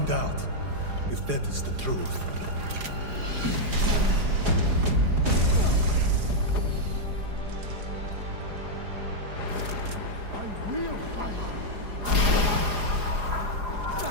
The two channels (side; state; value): left; late; 4.9 ms